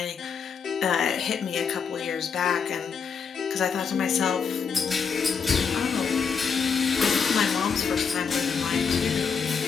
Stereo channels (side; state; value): right; quieter; 6.1 dB